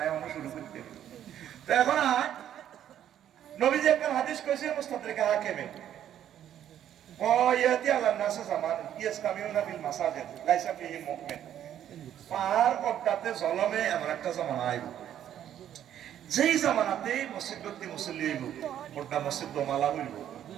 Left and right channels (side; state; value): left; quieter; 10.6 dB